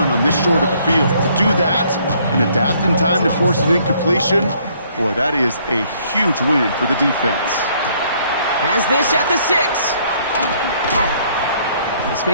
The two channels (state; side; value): inverted; both; correlation -0.64